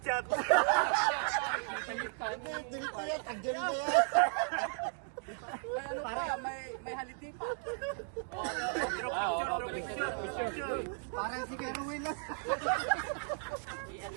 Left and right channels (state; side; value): silent; left; 54 dB below the other